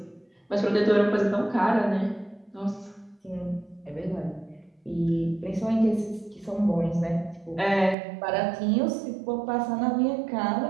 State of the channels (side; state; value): left; drops out; at 8.0 s